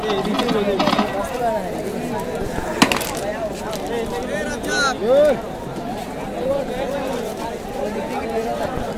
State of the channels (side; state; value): both; identical; correlation 1.00